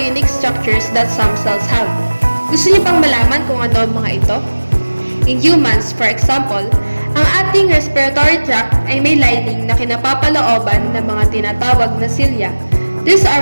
unique structures that some cells have. Gusto niyo bang malaman kung ano ang mga ito? In humans, for example, ang ating respiratory tract ay may lining na kinapapalooban ng mga tinatawag na cilia. These are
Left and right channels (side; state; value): both; inverted; correlation -1.00